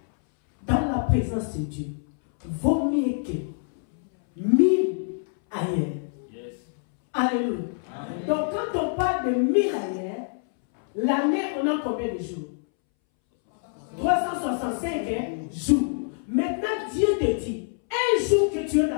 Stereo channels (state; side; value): silent; right; 61 dB below the other